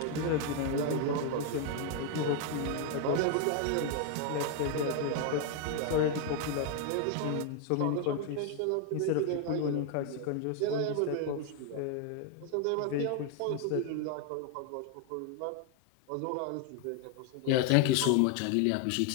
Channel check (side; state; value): both; different; correlation 0.01